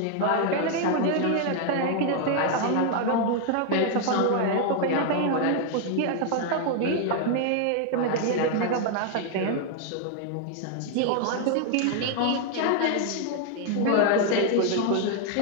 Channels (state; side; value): different; both; correlation 0.01